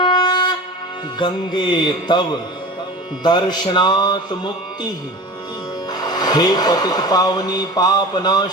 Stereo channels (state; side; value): normal; both; correlation 0.35